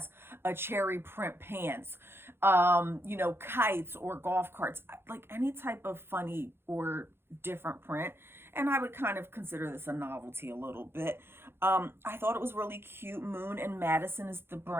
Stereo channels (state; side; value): late; left; 0.11 ms